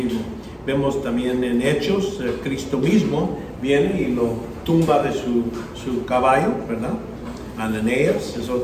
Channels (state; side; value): identical; both; correlation 1.00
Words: Vemos también en Hechos, Cristo mismo viene y lo tumba de su caballo, ¿verdad? Ananías es